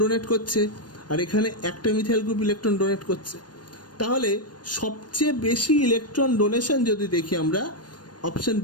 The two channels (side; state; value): right; late; 0.69 ms